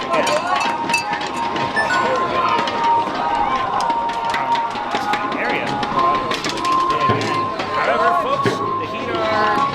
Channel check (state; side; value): identical; both; correlation 1.00